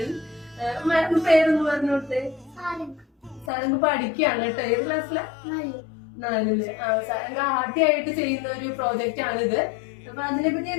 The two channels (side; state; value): right; drops out; at 3.5 s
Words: പേരൊന്ന് പറഞ്ഞോട്ടെ. സാരംഗ് പഠിക്കുകയാണ് കേട്ടോ. ഏത് ക്ലാസ്സിലെ? 4ല്. സാരംഗ് ആദ്യമായിട്ട് ചെയ്യുന്ന ഒരു പ്രോജക്റ്റ് ആണിത്. അപ്പൊ അതിനെപ്പറ്റി